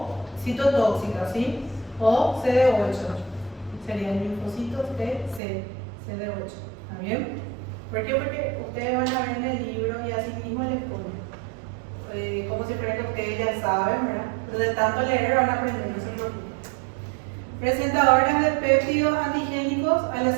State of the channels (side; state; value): left; drops out; at 5.4 s